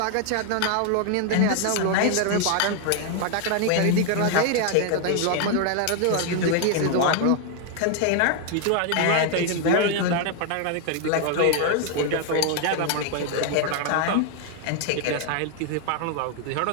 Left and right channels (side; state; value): both; different; correlation 0.00